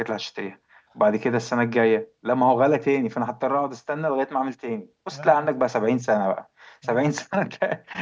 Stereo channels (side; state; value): both; identical; correlation 1.00